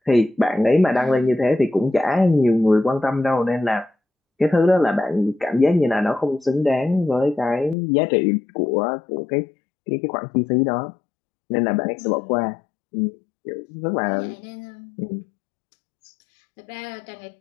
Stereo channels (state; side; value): drops out; right; at 7.8 s